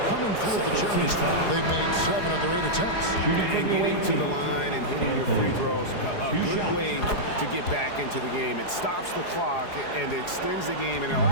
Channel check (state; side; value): late; right; 4.8 ms